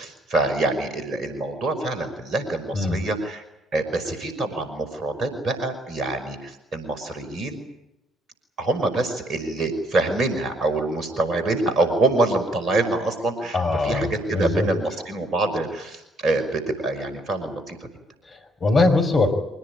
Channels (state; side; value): normal; both; correlation 0.67